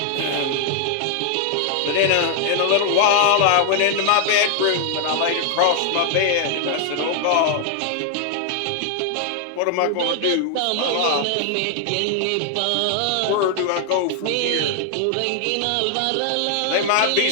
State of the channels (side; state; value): both; different; correlation 0.00